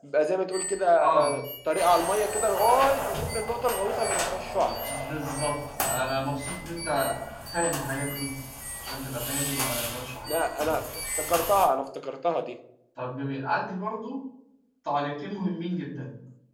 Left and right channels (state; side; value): identical; both; correlation 1.00